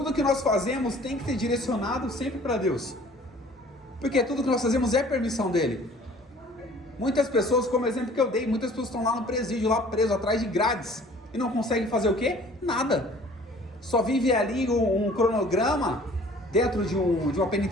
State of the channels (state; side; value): normal; both; correlation 0.51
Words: que nós fazemos tem que ser direcionado sempre para Deus. Porque tudo que nós fazemos é permissão dele. Muitas pessoas, como exemplo que eu dei, muitas pessoas estão lá no presídio, lá preso, atrás de grades. E não conseguem fazer o quê? Nada. Só vive ali um cronograma dentro de uma